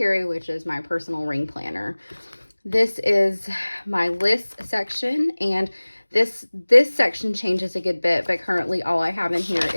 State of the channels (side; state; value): both; inverted; correlation -1.00